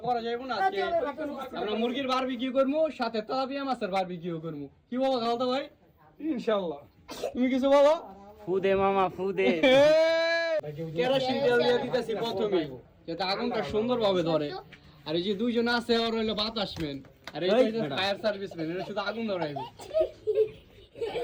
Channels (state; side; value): identical; both; correlation 1.00